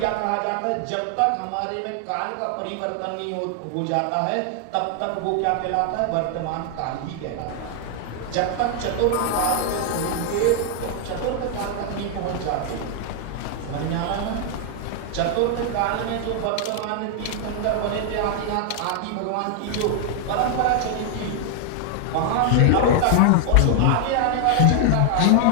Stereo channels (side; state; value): both; different; correlation 0.00